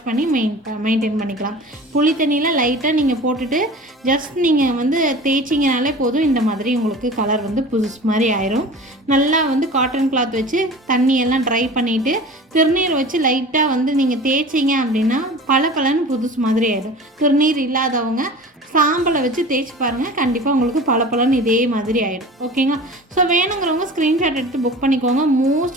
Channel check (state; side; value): normal; both; correlation 0.38